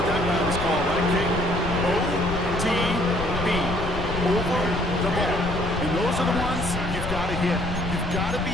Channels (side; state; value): left; noise; rumble, 6 dB below the sound